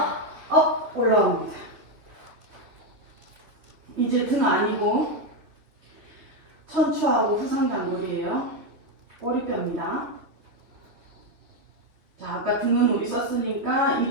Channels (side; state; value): left; late; 3.0 ms